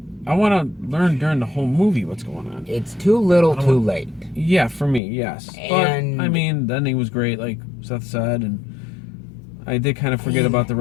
I want to learn during the whole movie what's going on. It's too little, too late. Yeah, for me, yes. And but I mean, the ending was great, like Seth said, and I did kind of forget about the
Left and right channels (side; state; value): right; drops out; at 5.0 s